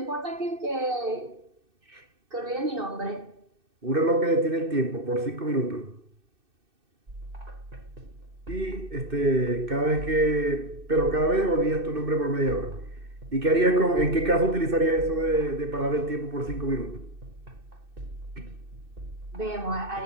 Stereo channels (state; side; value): late; left; 2.6 ms